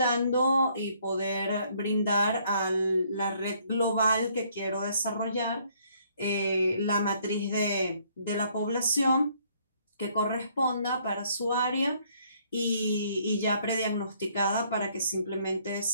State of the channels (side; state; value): both; inverted; correlation -0.65